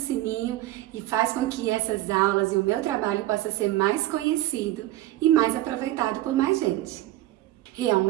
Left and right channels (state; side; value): quieter; left; 15.6 dB